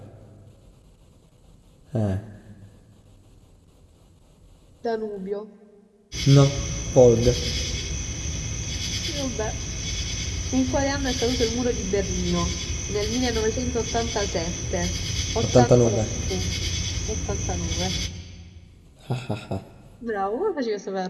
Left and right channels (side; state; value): both; identical; correlation 1.00